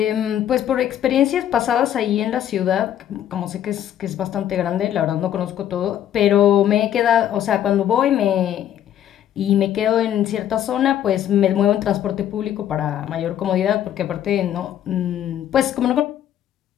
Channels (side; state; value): right; quieter; 10.8 dB